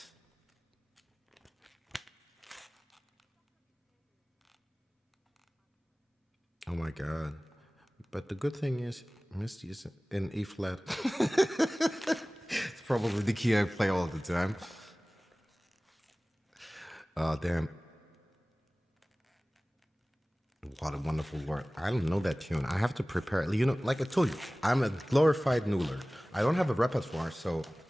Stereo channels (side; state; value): both; normal; correlation 0.98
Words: my God. But the good thing is, Misty is in E flat. It's probably the key I play all the time. Damn. What a wonderful word. I don't know that tune. I have to prepare. You know, like I told you, I'm a glorified noodler. I don't have a repertoire, so